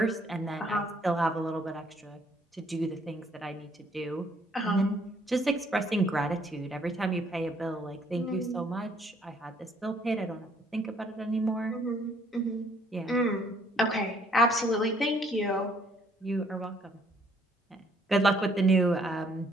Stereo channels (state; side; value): normal; both; correlation 0.65